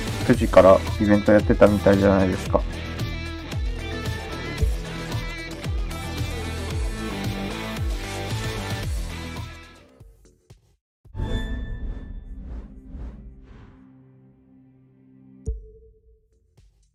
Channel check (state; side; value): identical; both; correlation 1.00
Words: 9時からイベントやってたみたいじゃないですか。